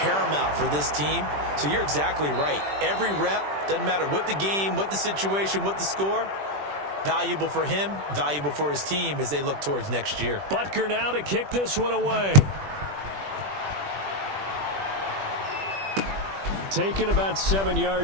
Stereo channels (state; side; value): late; left; 20 ms